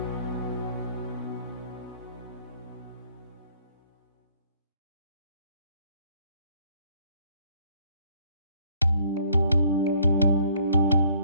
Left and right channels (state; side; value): inverted; both; correlation -0.62